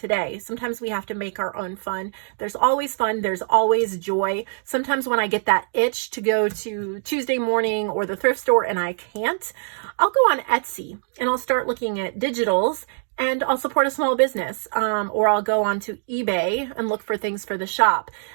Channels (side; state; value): left; silent; digital silence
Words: Sometimes we have to make our own fun. There's always fun. There's always joy. Sometimes when I get that itch to go to Tuesday morning or the thrift store and I can't, I'll go on Etsy and I'll start looking at digitals and I'll support a small business, or I'll go onto eBay and look for things for the shop.